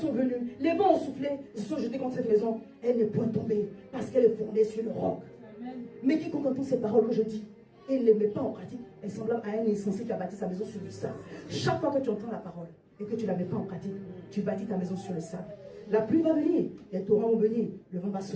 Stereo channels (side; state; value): both; identical; correlation 1.00